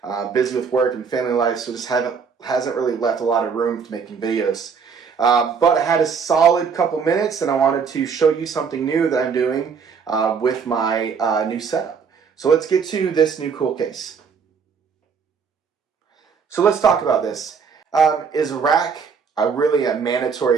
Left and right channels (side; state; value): left; quieter; 6.0 dB